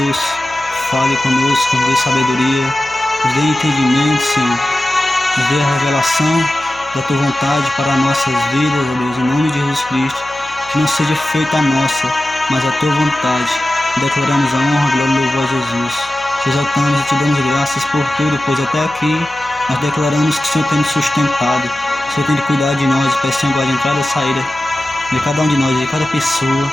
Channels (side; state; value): left; noise; hum, 22 dB below the sound